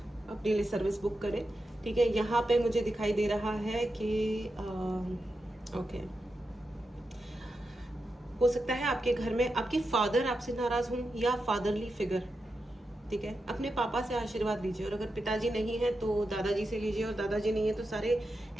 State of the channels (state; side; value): normal; both; correlation 0.88